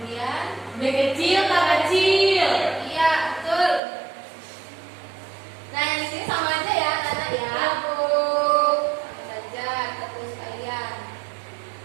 B kecil, K kecil. iya, betul. Nah, yang di sini sama aja ya, Nana ya. Ya, Bu. Sama saja, kita tulis sekalian.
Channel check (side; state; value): left; drops out; at 3.8 s